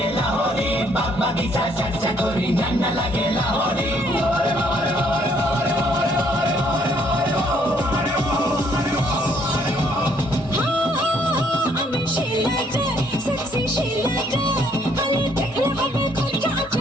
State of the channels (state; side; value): normal; both; correlation 0.66